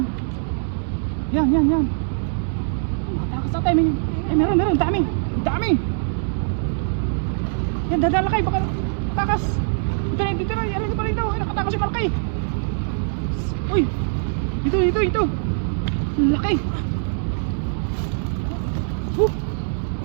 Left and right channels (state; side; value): silent; left; digital silence